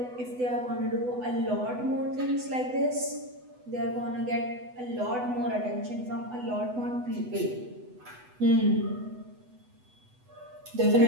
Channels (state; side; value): late; left; 8.0 ms